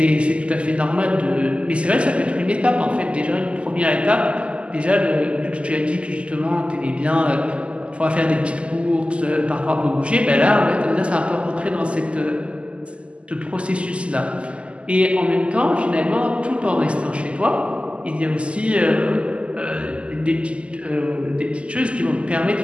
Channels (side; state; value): left; late; 0.055 ms